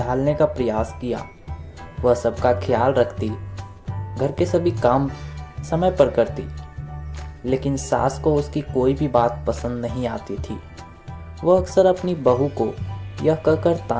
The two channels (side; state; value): both; identical; correlation 1.00